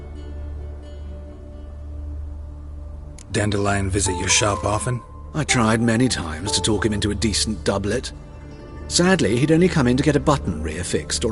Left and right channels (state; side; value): identical; both; correlation 1.00